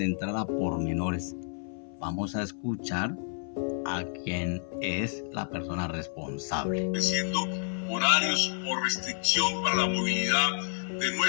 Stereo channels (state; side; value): silent; right; 55 dB below the other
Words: a pormenores. Vamos a escuchar a quien es la persona responsable. Estableciendo horarios o restricción para la movilidad de